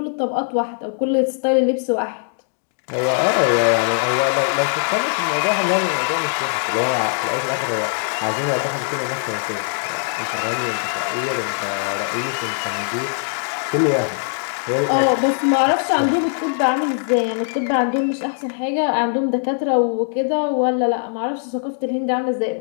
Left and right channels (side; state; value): right; silent; digital silence